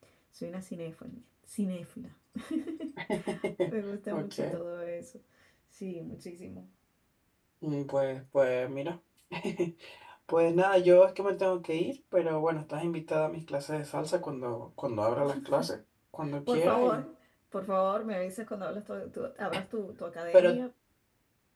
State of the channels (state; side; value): identical; both; correlation 1.00